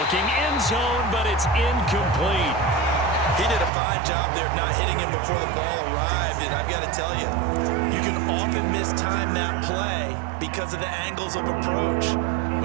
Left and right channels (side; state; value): left; drops out; at 3.7 s